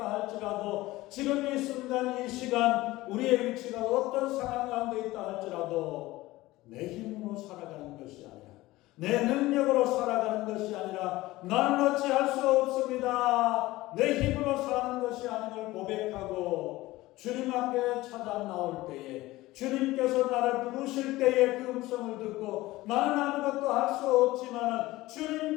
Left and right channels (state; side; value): quieter; right; 18.4 dB